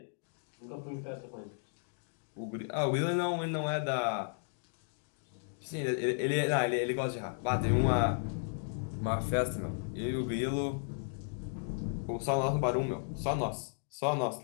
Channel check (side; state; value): right; silent; digital silence